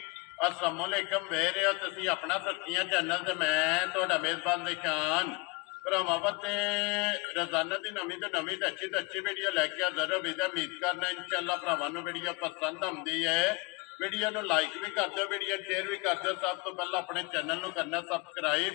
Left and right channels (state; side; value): quieter; right; 27.0 dB